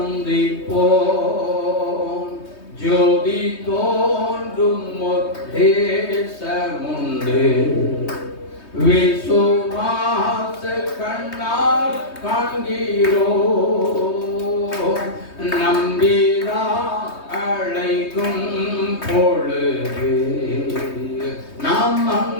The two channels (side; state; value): right; late; 3.2 ms